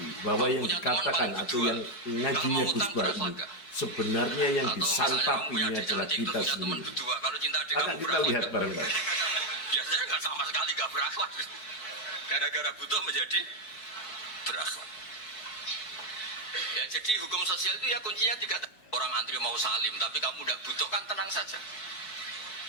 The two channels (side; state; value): right; late; 4.6 ms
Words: bahwa yang dikatakan atau yang ngajinya Gus Wahab ini sebenarnya yang disantapinya adalah kita sendiri. Akan kita lihat bareng-bareng. Biasanya nggak sama sekali nggak berakhlak. Gara-gara butuh menjadi berakhlak. Ya, jadi hukum sosial itu ya kuncinya tiga. Orang antri mau salim, tapi kamu udah butuh kan tenang saja.